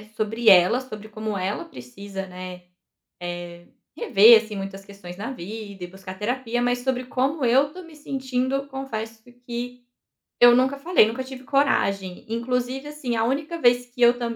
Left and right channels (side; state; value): both; identical; correlation 1.00